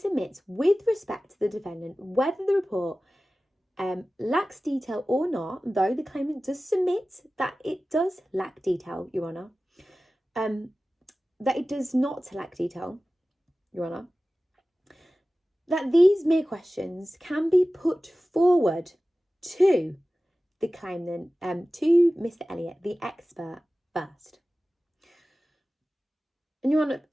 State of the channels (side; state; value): both; normal; correlation 0.96